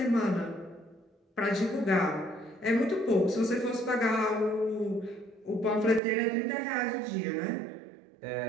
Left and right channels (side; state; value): left; drops out; at 6.0 s